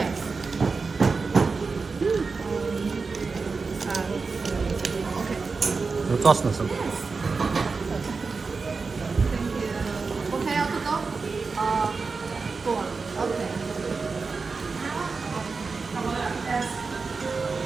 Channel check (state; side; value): quieter; left; 4.5 dB